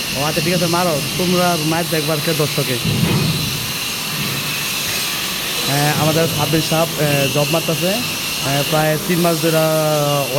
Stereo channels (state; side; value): identical; both; correlation 1.00